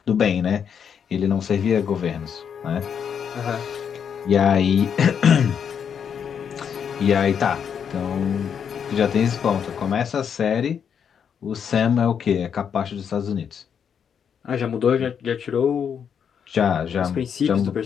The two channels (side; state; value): right; quieter; 7.6 dB